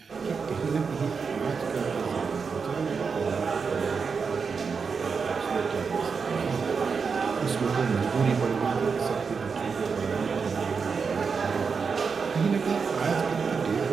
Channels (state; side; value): quieter; left; 5.5 dB